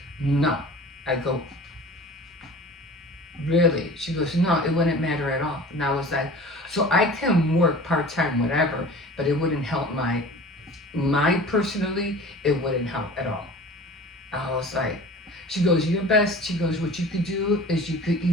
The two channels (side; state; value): both; normal; correlation 0.41